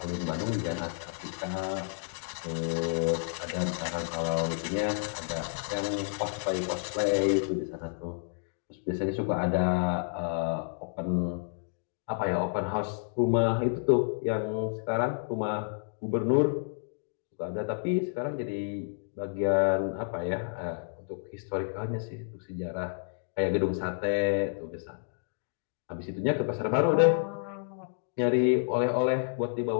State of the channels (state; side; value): silent; right; digital silence